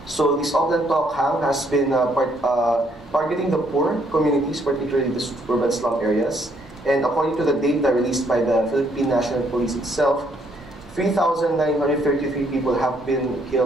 So this Auckland Talk Hang has been targeting the poor communities, particularly the urban slum areas. And according to the data released by the Philippine National Police itself, 3,933 people have been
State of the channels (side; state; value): both; normal; correlation 0.69